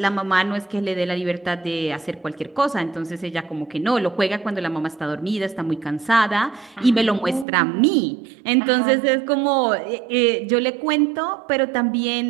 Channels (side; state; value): left; drops out; at 7.5 s